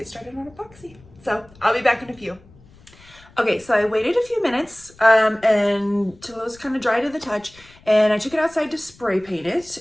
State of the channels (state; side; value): noise; left; rumble, 25 dB below the sound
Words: started on epoxy. So I'll be back in a few. Okay, so I waited a few minutes until it was kind of dry to the touch, and I took it outside to spray paint it.